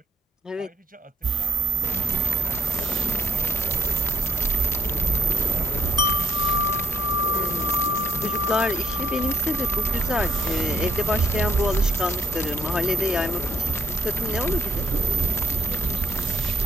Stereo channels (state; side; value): normal; both; correlation 0.65